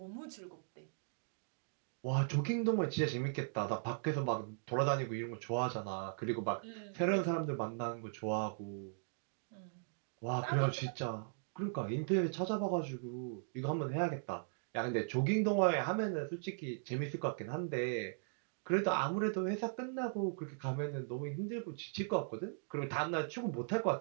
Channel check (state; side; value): silent; left; digital silence